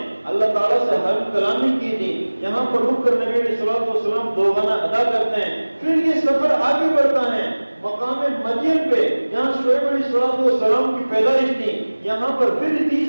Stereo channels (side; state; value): both; inverted; correlation -1.00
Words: اللہ تعالیٰ سے حلف کلامی کی تھی، یہاں پر رک کر نبی علیہ السلام 2 گانا ادا کرتے ہیں۔ پھر یہ سفر آگے بڑھتا ہے مقام مدین پہ جہاں شعیب علیہ السلام کی پیدائش تھی، یہاں پر پھر